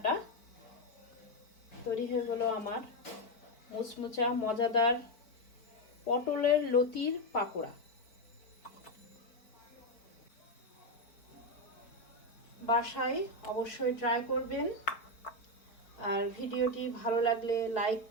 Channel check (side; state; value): right; late; 4.5 ms